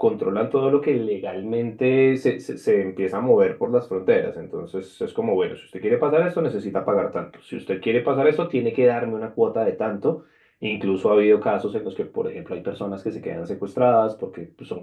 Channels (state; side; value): identical; both; correlation 1.00